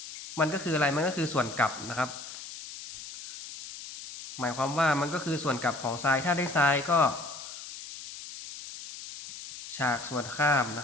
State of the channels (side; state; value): left; noise; hiss, 12 dB below the sound